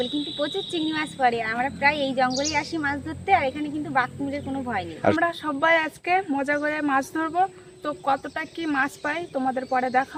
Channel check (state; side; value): identical; both; correlation 1.00